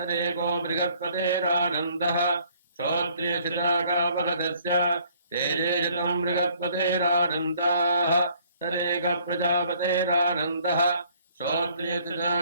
बृहस्पतेरानन्दः श्रोत्रियजनागावहतस्य तेजेशतम् बृहस्पतेरानन्दाः तदेक प्रजापतेरानन्दः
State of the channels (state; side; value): inverted; both; correlation -0.61